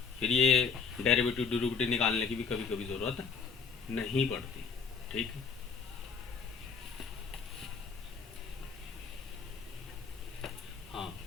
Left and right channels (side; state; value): right; quieter; 5.3 dB